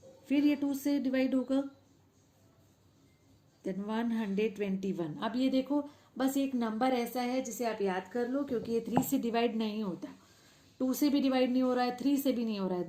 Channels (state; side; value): identical; both; correlation 1.00